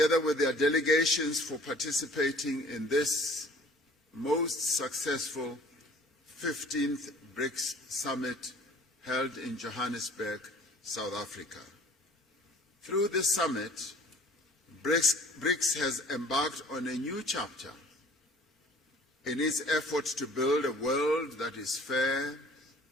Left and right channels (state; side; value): normal; both; correlation 0.51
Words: with their delegations, for participating in this most successful 15th Brics Summit held in Johannesburg, South Africa. Through this summit, Brics has embarked on a new chapter in its efforts to build a world that is fair,